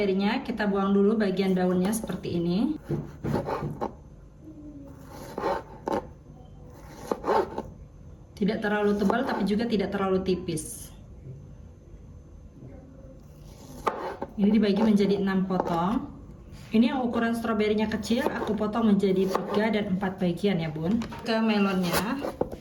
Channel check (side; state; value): both; identical; correlation 1.00